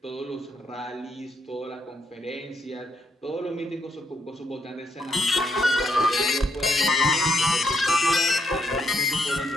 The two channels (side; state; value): both; normal; correlation 0.75